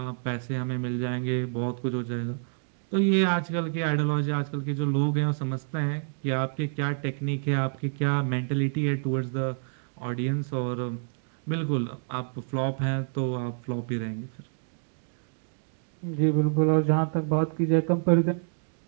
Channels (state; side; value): silent; left; 59 dB below the other